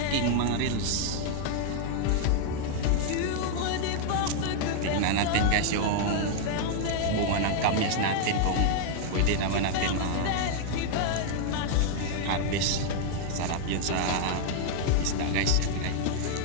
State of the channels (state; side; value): different; both; correlation 0.00